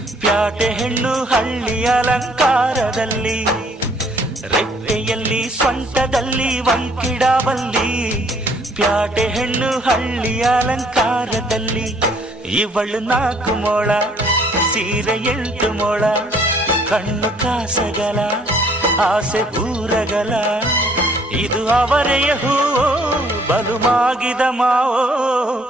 ಪ್ಯಾಟೆ ಹೆಣ್ಣು ಹಳ್ಳಿ ಅಲಂಕಾರದಲ್ಲಿ, ರೆಟ್ಟೆಯಲ್ಲಿ ಸೊಂಟದಲ್ಲಿ ವಂಕಿಡಾವಲ್ಲಿ, ಪ್ಯಾಟೆ ಹೆಣ್ಣು ಹಳ್ಳಿ ಅಲಂಕಾರದಲ್ಲಿ. ಇವಳು 4 ಮೊಳ ಸೀರೆ 8 ಮೊಳ, ಕಣ್ಣು ಕಾಸಗಲ ಆಸೆ ಊರಗಲ, ಇದು ಅವರೆಯ ಹೂವೋ ಬಲು ಮಾಗಿದ ಮಾವೋ.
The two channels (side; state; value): both; normal; correlation 0.61